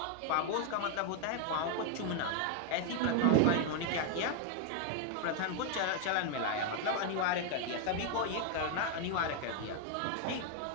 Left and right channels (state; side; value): different; both; correlation 0.01